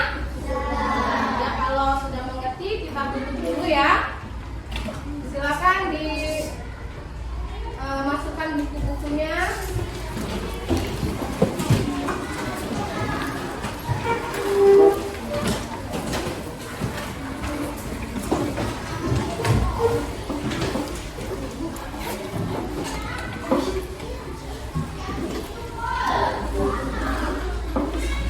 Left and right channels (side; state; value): both; identical; correlation 1.00